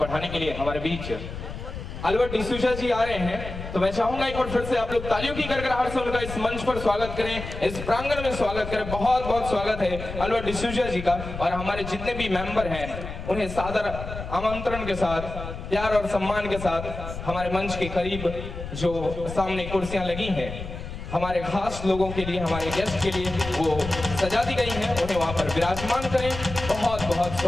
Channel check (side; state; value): left; noise; rumble, 9 dB below the sound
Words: के लिए हमारे बीच अल्बर्ट डिसूजा जी आ रहे हैं, तो मैं चाहूंगा एक बार फिर से आप लोग तालियों की गड़गड़ाहट से उनका इस मंच पर स्वागत करें, इस प्रांगण में स्वागत करें। बहुत बहुत स्वागत है अल्बर्ट डिसूजा जी का। और हमारे जितने भी मेंबर हैं उन्हें सादर आमंत्रण के साथ, प्यार और सम्मान के साथ हमारे मंच के करीब जो सामने कुर्सियां लगी हैं हमारे खास लोगों के लिए, हमारे गेस्ट के लिए वो सजा दी गई हैं, उन्हें वहां पर विराजमान करें। बहुत बहुत